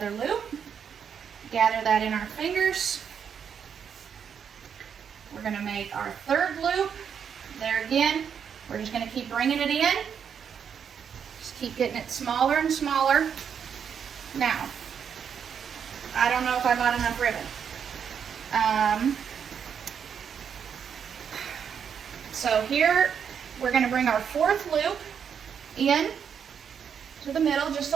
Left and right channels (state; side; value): quieter; left; 7.5 dB